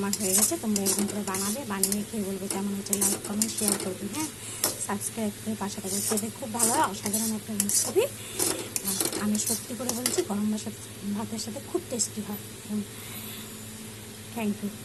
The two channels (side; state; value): left; noise; rumble, 25 dB below the sound